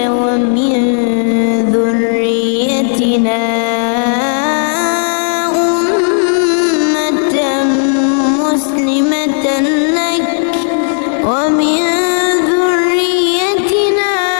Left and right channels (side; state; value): right; silent; digital silence